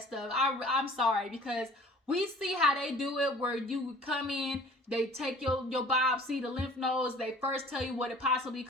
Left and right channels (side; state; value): both; normal; correlation 0.48